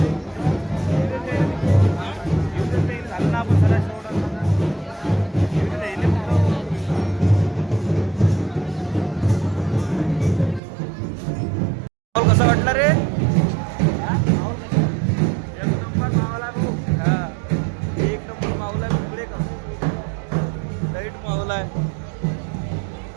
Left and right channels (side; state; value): left; drops out; at 10.6 s